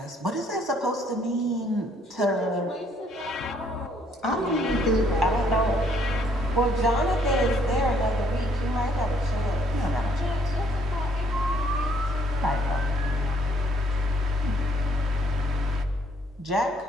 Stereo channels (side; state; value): both; normal; correlation 0.65